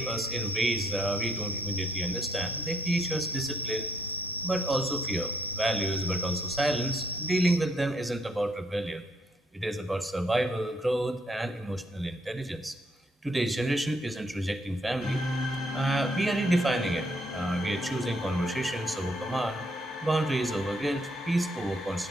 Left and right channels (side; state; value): both; normal; correlation 0.70